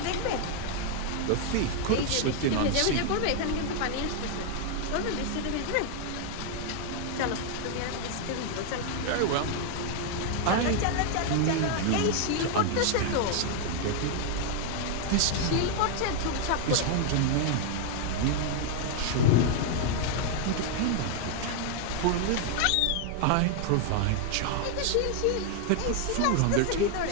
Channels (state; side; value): different; both; correlation 0.00